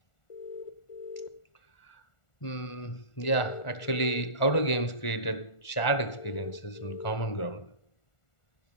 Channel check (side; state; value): right; late; 1.4 ms